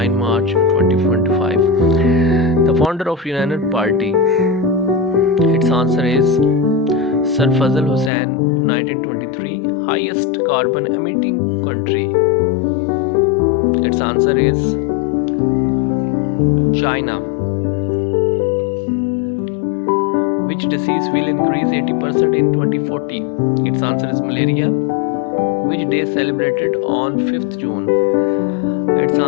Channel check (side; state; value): right; drops out; at 8.1 s